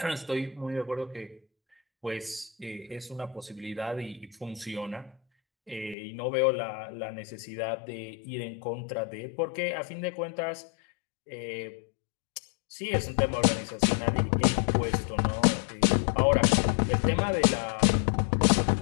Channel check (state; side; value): drops out; right; at 6.0 s